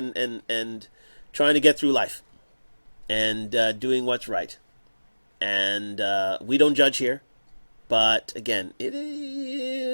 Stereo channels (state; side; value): inverted; both; correlation -1.00